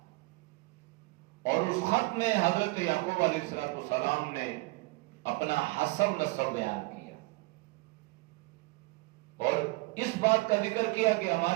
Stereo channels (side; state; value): left; quieter; 24.7 dB